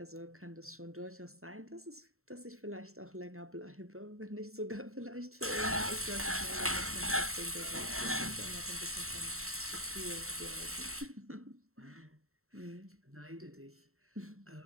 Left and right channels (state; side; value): late; left; 0.63 ms